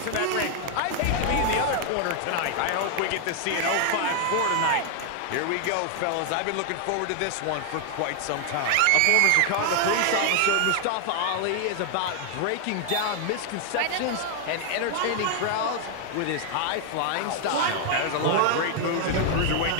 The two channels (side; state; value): both; different; correlation 0.00